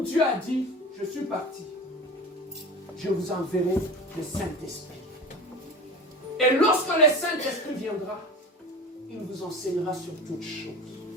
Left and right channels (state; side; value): normal; both; correlation 0.33